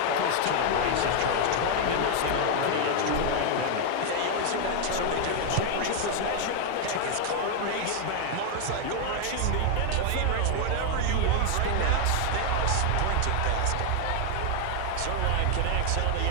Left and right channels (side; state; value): both; different; correlation 0.00